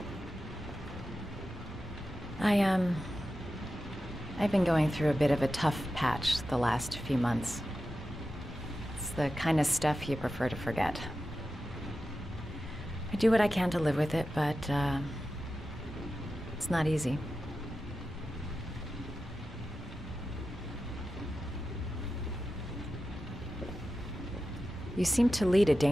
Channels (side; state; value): both; normal; correlation 0.92